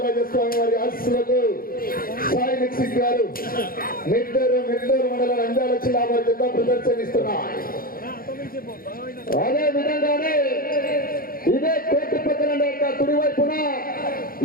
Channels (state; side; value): late; right; 0.42 ms